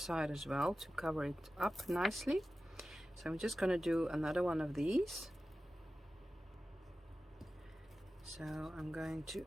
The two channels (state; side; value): normal; both; correlation 0.94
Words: as well to cover it up nicely. So I'm just going to do another one of these. So I'm going to